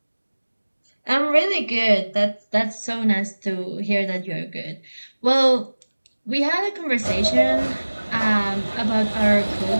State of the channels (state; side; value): inverted; both; correlation -1.00